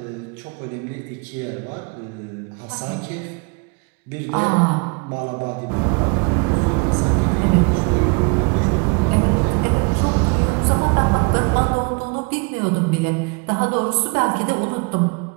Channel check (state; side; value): quieter; left; 32.6 dB